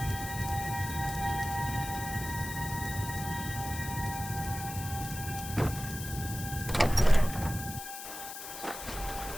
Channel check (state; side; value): noise; left; hiss, 9 dB below the sound